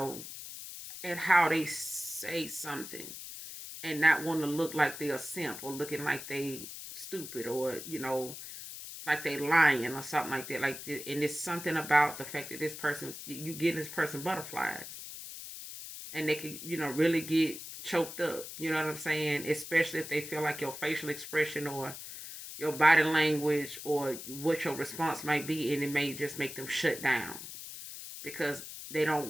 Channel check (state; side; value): noise; left; hiss, 11 dB below the sound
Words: at how they say something, and not want to look like they're a simp or looking like they stupid or like they lying or something like that. And it's something about the fact that this person, you give this person butterflies, and they can, really get choked up. You know what I'm saying? Especially if they feel like your facial expression or your body language or what your response might be, and it may just make them shut down because they